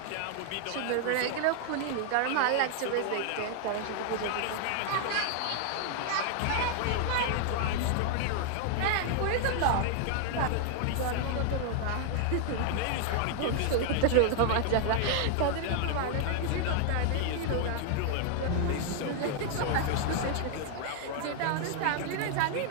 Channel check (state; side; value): different; both; correlation 0.00